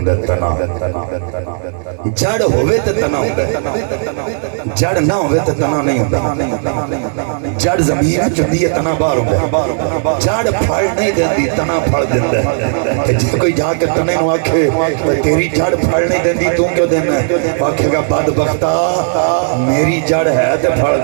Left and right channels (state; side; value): silent; left; digital silence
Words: تنا۔ جڑ ہوئے تو تنا ہوتا ہے، جڑ نہ ہوئے تو تنا نہیں ہوتا۔ جڑ زمین چندی ہے، تنا باہر ہوتا ہے۔ جڑ پھڑ نہیں دیندی، تنا پھڑ دیندہ ہے۔ جس کوئی جا کے تنے نو آکھے تیری جڑ پھڑ نہیں دیندی تو کیوں دینا ہے؟ آکھے گا بدبختہ میری جڑ ہے تو پھڑ